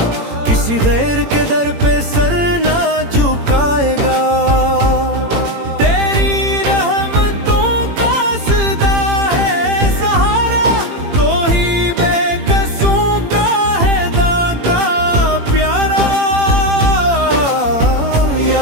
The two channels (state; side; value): late; left; 18 ms